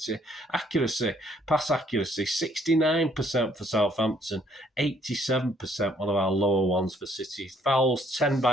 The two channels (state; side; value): normal; both; correlation 0.65